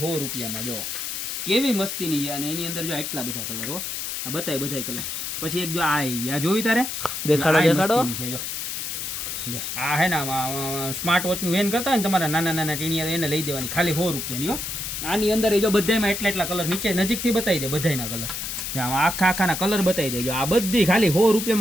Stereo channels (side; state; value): left; noise; hiss, 4 dB below the sound